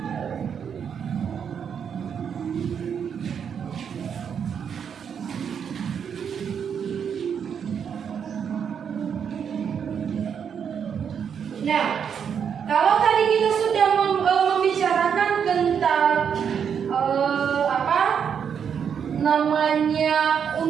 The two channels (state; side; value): quieter; left; 7.5 dB